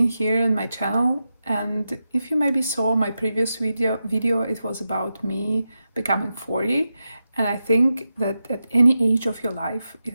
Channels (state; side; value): inverted; both; correlation -0.90